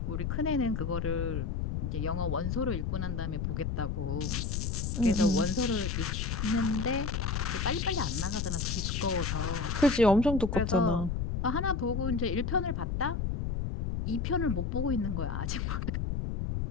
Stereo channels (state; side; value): noise; left; rumble, 1 dB below the sound